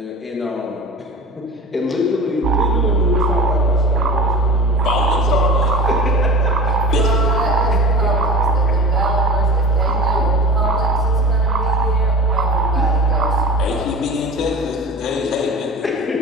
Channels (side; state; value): both; normal; correlation 0.34